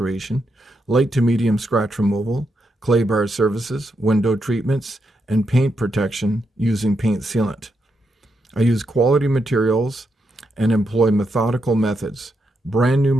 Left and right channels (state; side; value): normal; both; correlation 0.82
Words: light to medium scratch removal, clay bar services, window treatments, and paint protection using paint sealant. I use quality materials and employ methodical methods. Brand new